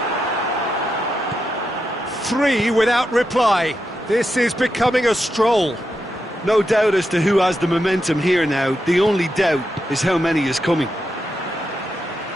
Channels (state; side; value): normal; both; correlation 0.86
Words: 3 without reply. This is becoming a stroll. No doubt as to who has the momentum here now. The only doubt is how many is coming.